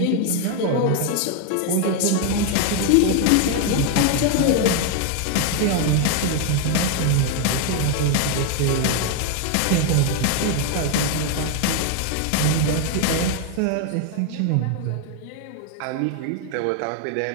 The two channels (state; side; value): different; both; correlation 0.01